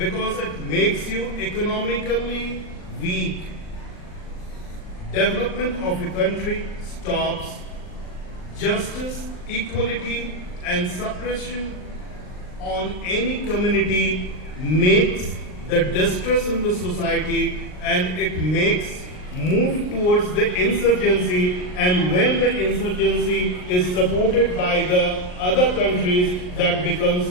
it makes you economically weak. Development of a country stops. Justice, equality, and suppression on any community makes the distress in the society, and it makes move towards the insurgency, and when the insurgency is supported by the other countries, that becomes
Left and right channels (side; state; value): right; late; 39 ms